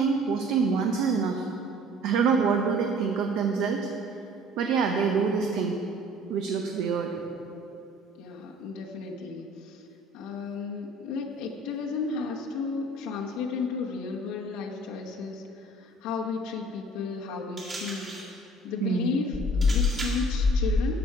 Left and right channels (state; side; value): normal; both; correlation 0.52